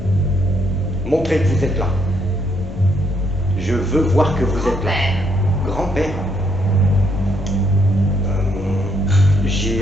Montrez que vous êtes là. Je veux voir que vous êtes là. Grand-père. Grand-père,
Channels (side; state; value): left; noise; rumble, 12 dB below the sound